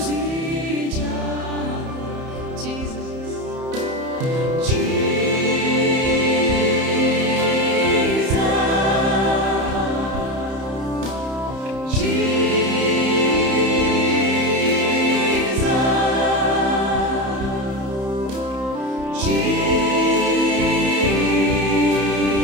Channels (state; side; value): late; left; 31 ms